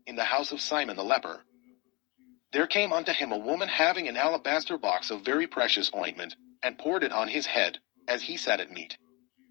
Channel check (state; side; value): quieter; right; 27.0 dB